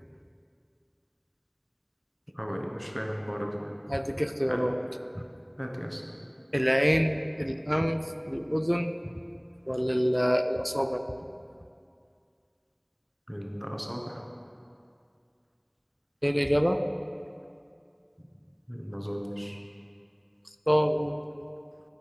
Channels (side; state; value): both; identical; correlation 1.00